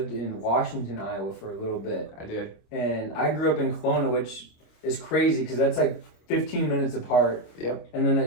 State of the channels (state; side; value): late; right; 26 ms